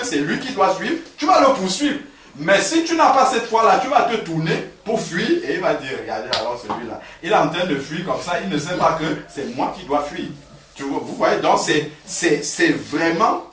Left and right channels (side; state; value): both; identical; correlation 1.00